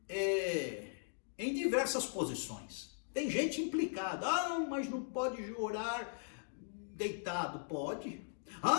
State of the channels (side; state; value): right; silent; digital silence